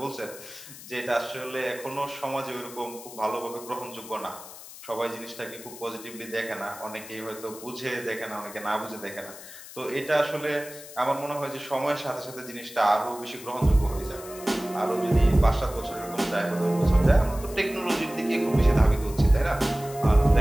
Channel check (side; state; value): left; noise; hiss, 15 dB below the sound